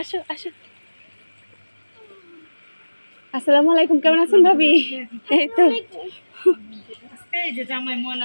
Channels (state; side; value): inverted; both; correlation -1.00